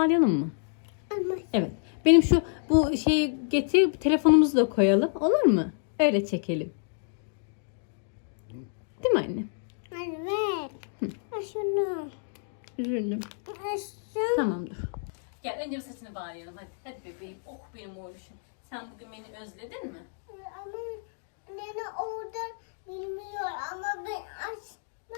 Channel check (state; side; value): silent; right; digital silence